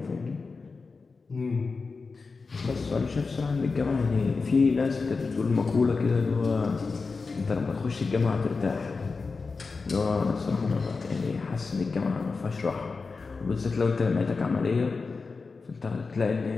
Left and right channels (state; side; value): quieter; right; 4.4 dB